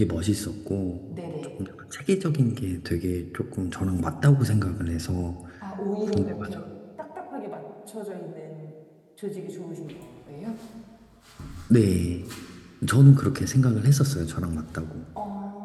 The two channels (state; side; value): identical; both; correlation 1.00